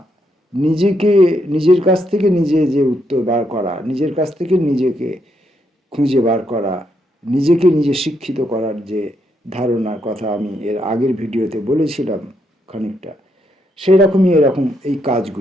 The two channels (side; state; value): both; normal; correlation 0.77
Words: নিজের কাছ থেকে নিজে যে উত্তর বার করা, নিজের কাছ থেকে নিজেকে খুঁজে বার করা, নিজেকে নিজে শিক্ষিত করার যে ধারণার কথা আমি এর আগের ভিডিওতে বলেছিলাম খানিকটা, সেই রকমই এরকম এই